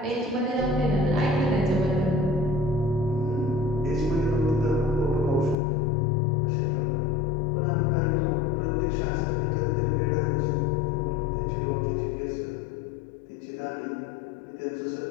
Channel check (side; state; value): right; drops out; at 5.6 s